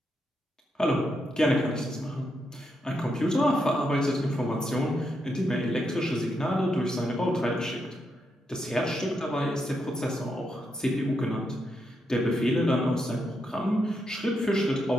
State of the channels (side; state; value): both; normal; correlation 0.82